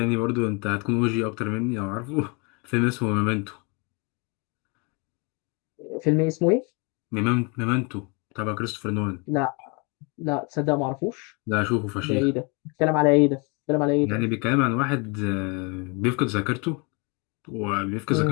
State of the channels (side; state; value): right; quieter; 31.9 dB